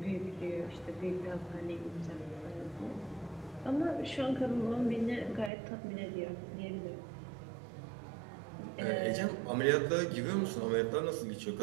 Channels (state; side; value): drops out; left; at 5.5 s